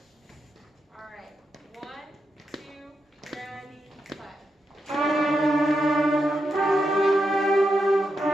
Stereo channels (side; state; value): both; normal; correlation 0.85